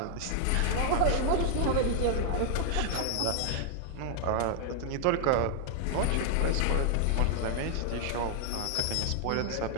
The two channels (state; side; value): different; both; correlation 0.00